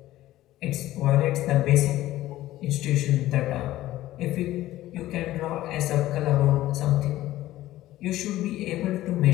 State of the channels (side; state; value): right; quieter; 15.3 dB